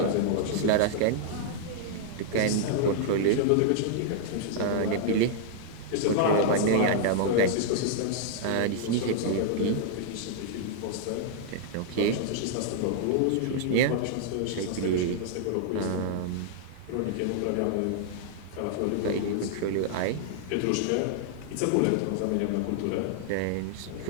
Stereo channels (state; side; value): different; both; correlation -0.01